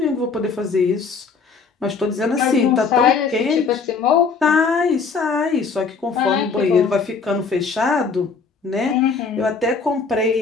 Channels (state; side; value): quieter; right; 5.0 dB